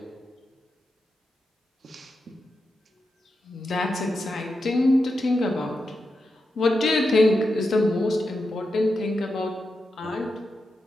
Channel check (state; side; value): normal; both; correlation 0.88